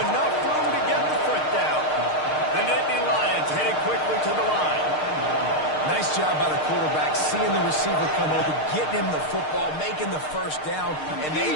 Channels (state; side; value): late; right; 6.5 ms